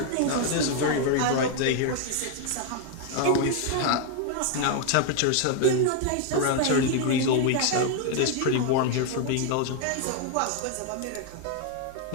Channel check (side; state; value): both; different; correlation 0.01